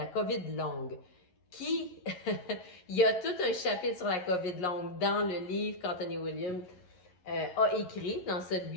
longue. Il y a tout un chapitre sur la COVID longue dans le livre qu'Anthony William a écrit, dans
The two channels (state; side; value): late; right; 11 ms